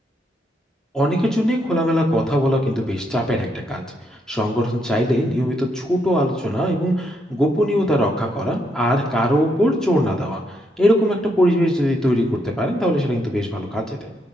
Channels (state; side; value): normal; both; correlation 0.77